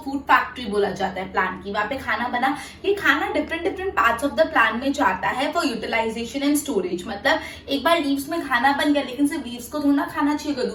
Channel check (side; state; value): both; identical; correlation 1.00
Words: फूड फैक्ट्री बोला जाता है प्लांट की, वहां पे खाना बना। ये खाना different parts of the plant में जाता है फॉर यूटिलाइजेशन एंड स्टोरेज। मतलब एक बार लीव्स में खाना बन गया, लेकिन सिर्फ लीव्स को थोड़ा खाना चाहिए होगा,